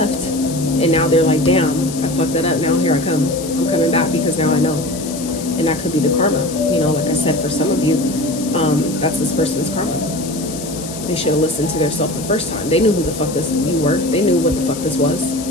and now they're like, damn, I fucked that up. Now here I come. I'm coming back because now I know. And that could be the karma. You know, like I said, for some of you, that's this person's karma. They should have listened to their self the first time. They knew who the fuck you were. They knew what the fuck this was.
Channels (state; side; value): noise; left; hiss, 11 dB below the sound